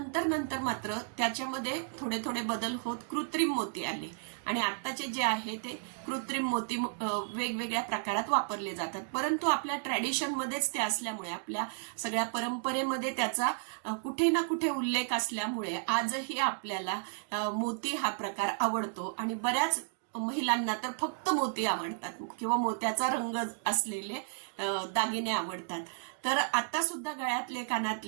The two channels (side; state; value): left; silent; digital silence